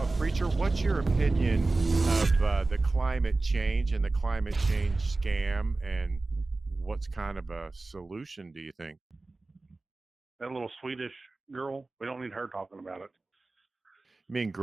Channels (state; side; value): quieter; left; 3.3 dB